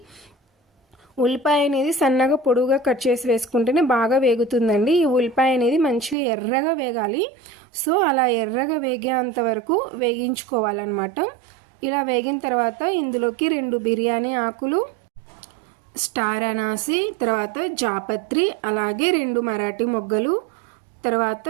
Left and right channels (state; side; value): drops out; left; at 6.2 s